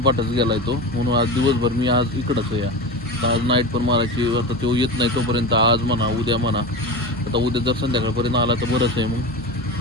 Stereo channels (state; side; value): normal; both; correlation 0.25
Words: गेलाय तो. म्हणून आज दिवसभर मी आज इकडंच आहे. आज नाईट पण मारायची. आता तो येत नाही तोपर्यंत आज म्हणा उद्या म्हणा. आता उद्या जर संध्याकाळपर्यंत आला तर बरंच आहे मग